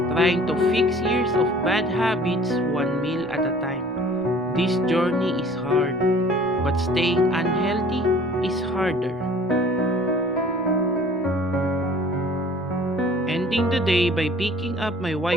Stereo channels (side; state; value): both; normal; correlation 0.50